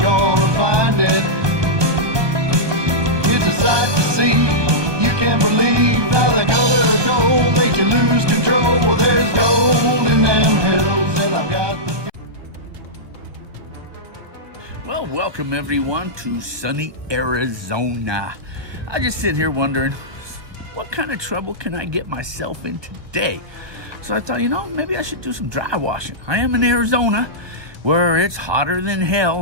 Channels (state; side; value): late; left; 1.2 ms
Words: find it. It's a sight to see, you can't believe how the color of gold makes you lose control. Well, there's gold in them hills and I've got the... Well, welcome everyone to sunny Arizona. I just sit here wondering, what kind of trouble can I get myself in today? So I thought, maybe I should do some dry washing. I am in Arizona, where it's hotter than